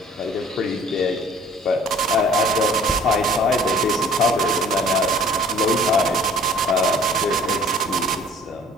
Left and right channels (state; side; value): normal; both; correlation 0.51